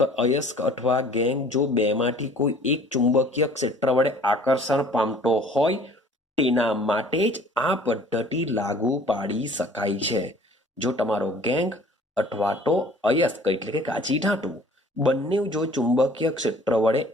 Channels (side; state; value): both; normal; correlation 0.51